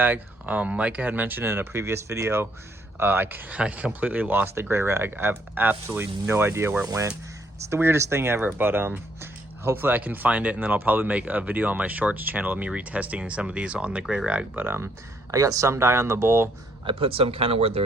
Micah had mentioned in a previous video, I completely lost the gray rag. I have absolutely no idea where it went. It's the weirdest thing ever, but hopefully I can find it, and then I'll probably make a video on my shorts channel of me retesting some of these on the gray rag. But I got some dye on the bowl. I put some kind of where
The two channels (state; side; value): normal; both; correlation 0.70